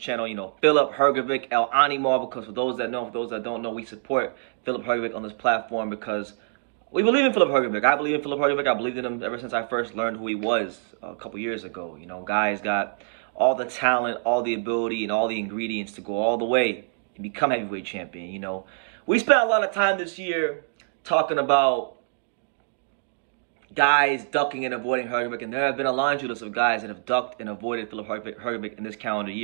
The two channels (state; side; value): silent; left; digital silence